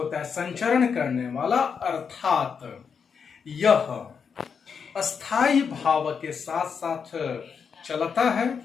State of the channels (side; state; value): right; quieter; 6.3 dB